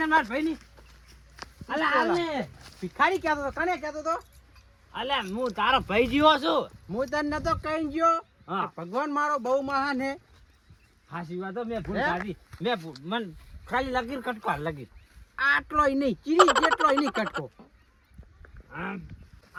માર ભાઈ ની હાલે ભિખારી કહેતો તો કને કહેતો તો અલે હું તારો ભાઈ જીવો છું હું તને નતો કઈ ગયો હા. કે ભગવાન મારો બહુ મહાન હે હાસી વાત હો, મેં ભૂલ હે? કાઢી મન ખાલી લગીર કટકો લગીર આટલોય નહીં ચીરી જેટલોય નહીં કટકો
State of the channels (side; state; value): both; identical; correlation 1.00